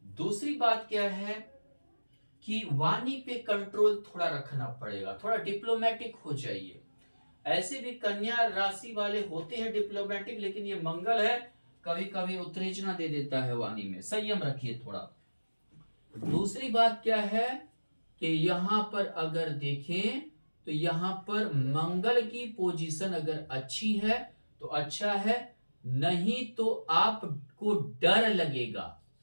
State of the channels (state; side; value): inverted; both; correlation -1.00